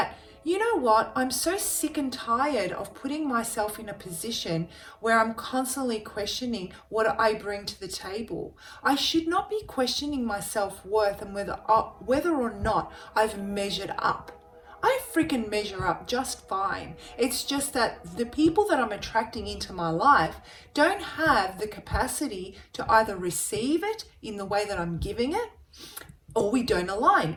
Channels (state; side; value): identical; both; correlation 1.00